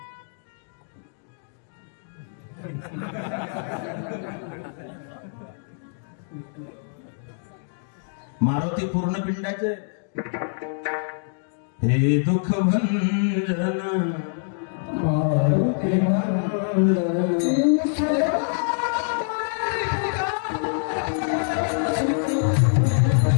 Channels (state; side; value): silent; right; digital silence